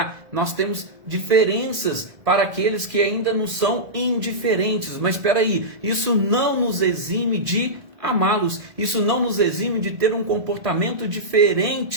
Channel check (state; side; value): late; left; 1.7 ms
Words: Nós temos diferenças para aqueles que ainda não são indiferentes. Mas espera aí, isso não nos exime de amá-los, isso não nos exime de ter um comportamento